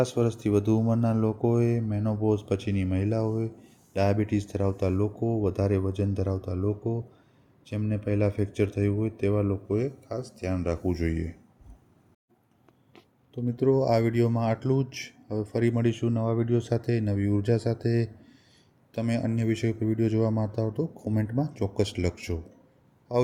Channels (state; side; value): identical; both; correlation 1.00